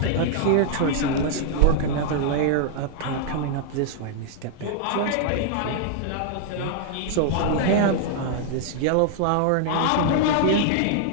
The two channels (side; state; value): both; different; correlation -0.01